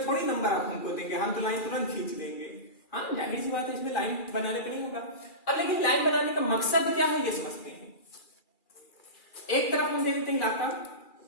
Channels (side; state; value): right; late; 2.4 ms